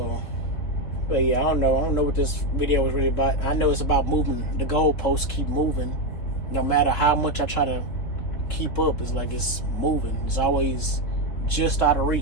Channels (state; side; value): late; right; 4.0 ms